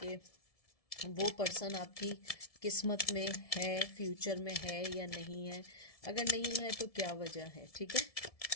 वो पर्सन आपकी किस्मत में है, फ्यूचर में है या नहीं है। अगर नहीं है तो क्या वजह है। ठीक है,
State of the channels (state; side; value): late; right; 1.7 ms